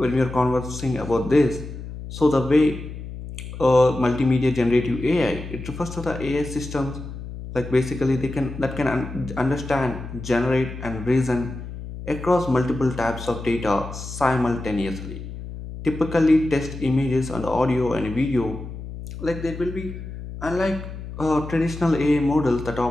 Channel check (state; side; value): noise; left; hum, 10 dB below the sound